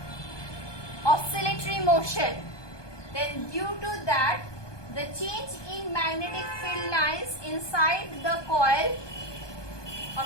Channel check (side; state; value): right; late; 1.2 ms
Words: oscillatory motion, then due to that, the change in magnetic field lines inside the coil, a